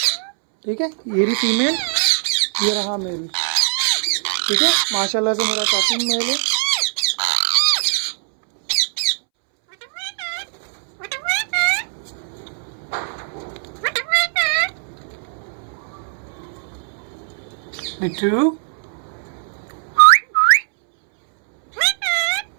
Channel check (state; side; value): silent; left; 66 dB below the other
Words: ठीक है, ये रही फीमेल, ये रहा मेल। ठीक है, माशाल्लाह से मेरा टॉकिंग मेल है। मिट्टू,